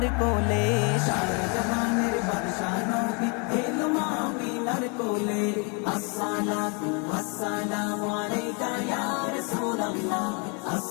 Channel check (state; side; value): quieter; right; 34.7 dB